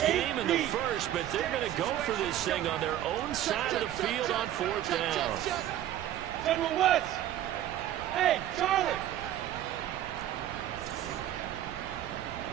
game in the first, but they're going to go for this thing on their own side of the field on fourth down. General West. Hey, Charlie.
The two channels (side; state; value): left; quieter; 12.3 dB